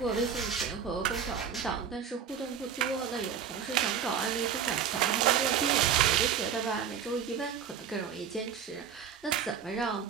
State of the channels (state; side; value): quieter; left; 7.8 dB